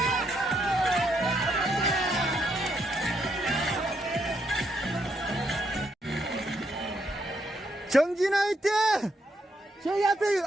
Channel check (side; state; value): both; normal; correlation 0.76